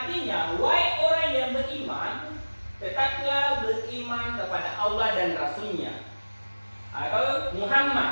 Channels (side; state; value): both; inverted; correlation -1.00